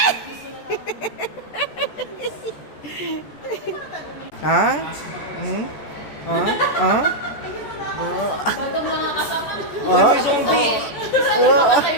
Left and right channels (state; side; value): late; right; 14 ms